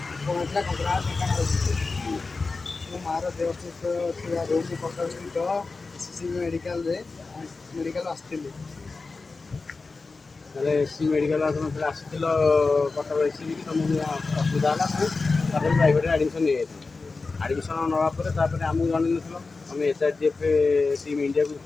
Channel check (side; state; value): right; quieter; 4.0 dB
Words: କଙ୍କଡ଼ା ଦୋକାନ ଅଛି। ମୋ ମାଆର ଦେହ ଅସୁସ୍ଥ ଥିବାରୁ ମୁଁ କଟକ ସ୍ଥିତ SCC ମେଡ଼ିକାଲ ଆସିଥିଲି। ତାହେଲେ ଏସି ମେଡ଼ିକାଲ ଆପଣ ଆସିଥିଲ କଟକ ଏସିବି କି ତୁମକୁ ଅସୁବିଧା ହେଲା ତାପରେ ପ୍ରାଇଭେଟରେ ଆଡ଼ମିସନ୍ ନେଇଯାଇଥିଲ। ଆଡ଼ମିସନ୍ ନେବା ପରେ ତାପରେ ଆମକୁ ଜଣେଇନଥିଲ, ତୁମେ SRGF ଟିମ୍ ଇଣ୍ଡିଆକୁ